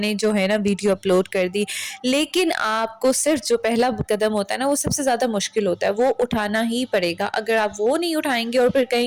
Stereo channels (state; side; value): identical; both; correlation 1.00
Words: جو ہے نا ویڈیو اپلوڈ کر دی۔ لیکن آپ کو صرف جو پہلا قدم ہوتا ہے نا وہ سب سے زیادہ مشکل ہوتا ہے، وہ اٹھانا ہی پڑے گا۔ اگر آپ وہ نہیں اٹھائیں گے اور پھر